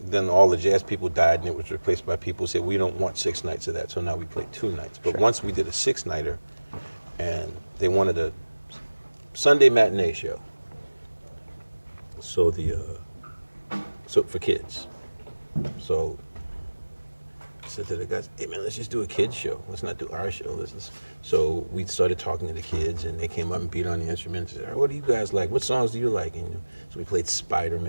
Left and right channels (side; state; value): both; inverted; correlation -1.00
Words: Then all the jazz people died, and it was replaced by people who said we don't want 6 nights of that. So now we play 2 nights. But once we did a 6-nighter, and they wanted a Sunday matinee show. So so for kids. So I said to the guys, "Hey man, let's just do a kids show. Let's not do our show. So we started talking to the kids, and they came up and beat on the instruments. And said, "What do you guys like? What songs do you like?" And so we played